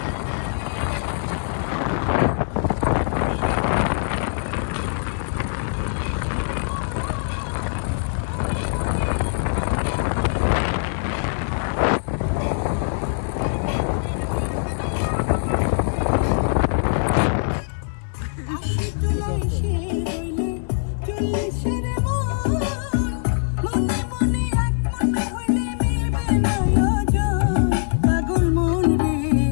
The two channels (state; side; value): silent; right; digital silence